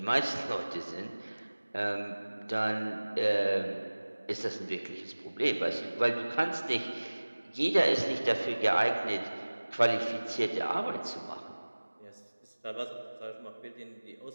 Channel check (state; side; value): inverted; both; correlation -1.00